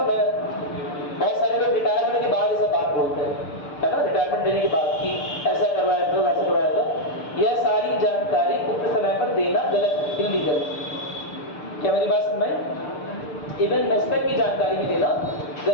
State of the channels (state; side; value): late; right; 6.7 ms